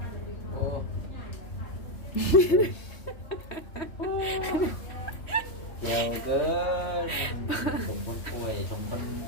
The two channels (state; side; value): late; right; 3.1 ms